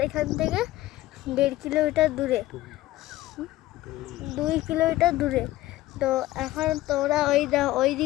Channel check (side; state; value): right; quieter; 16.3 dB